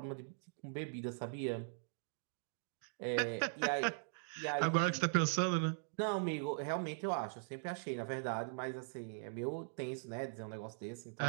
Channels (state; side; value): silent; left; digital silence